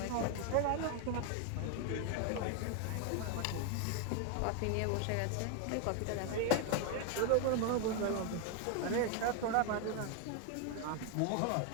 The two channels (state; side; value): different; both; correlation 0.01